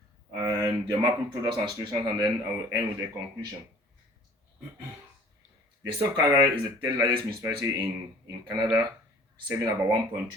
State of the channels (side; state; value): both; normal; correlation 0.50